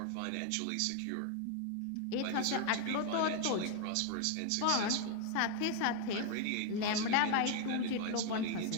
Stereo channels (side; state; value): both; different; correlation 0.01